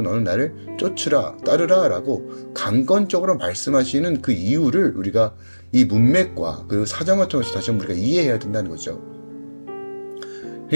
너는 나를 쫓으라, 따르라 라고 강권적으로 말씀하시는 그 이유를 우리가 이 문맥과 그 사정을 통해서 다시 한번 우리가 이해해야 된다는 거죠.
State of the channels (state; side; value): inverted; both; correlation -1.00